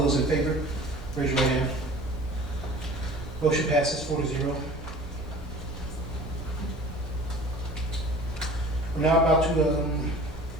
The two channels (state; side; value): normal; both; correlation 0.44